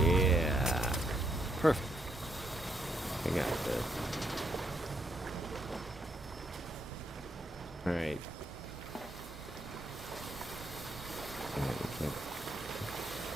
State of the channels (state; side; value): normal; both; correlation 0.76